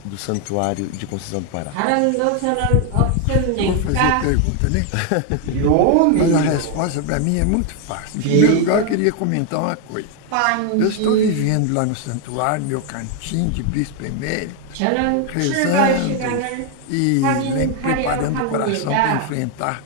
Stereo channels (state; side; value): different; both; correlation 0.00